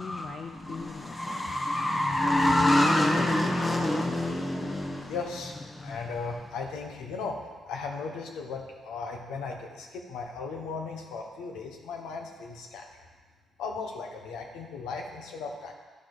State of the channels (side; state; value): both; normal; correlation 0.88